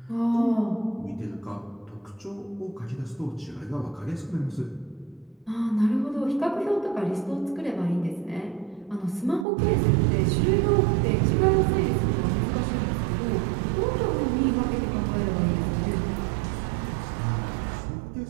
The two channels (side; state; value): left; drops out; at 9.5 s